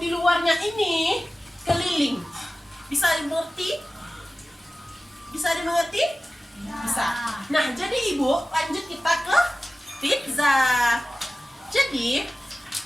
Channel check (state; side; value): normal; both; correlation 0.96